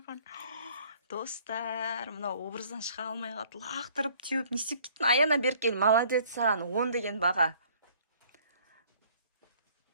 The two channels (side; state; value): both; inverted; correlation -0.56